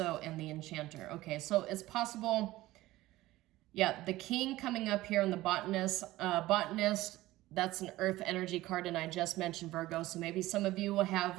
and the Enchanter. Okay, so it's possible, yeah, the King coming up here and the Botanist. Botanist, that's an Earth energy card, and I just mentioned Virgo, so maybe some of you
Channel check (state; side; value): quieter; left; 17.1 dB